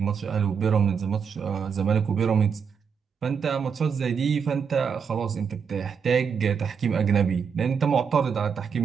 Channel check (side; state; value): left; quieter; 6.5 dB